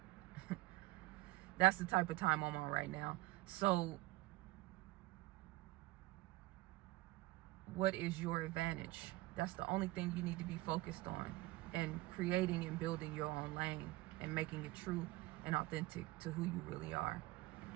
That's the type of time I'm on right now. So what is your advantage? That's the only thing you need to be focused on, and creating and building your own lane and making it true and authentic to who you really are.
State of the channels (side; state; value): left; quieter; 19.7 dB